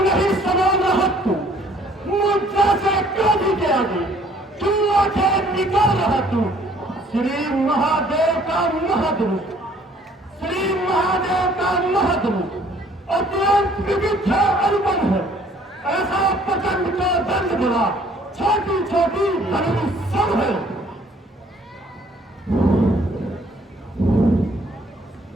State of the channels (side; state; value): both; normal; correlation 0.59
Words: नहीं समान रहा तू, मुझसे से क्रोधी के आगे तू आंखें निकाल रहा तू। श्री महादेव का महदरूप, श्री महादेव का महदरूप अत्यंत विविधा अनुपम है। ऐसा प्रचंड का दंड बड़ा छोटी छोटी धर्म सब है।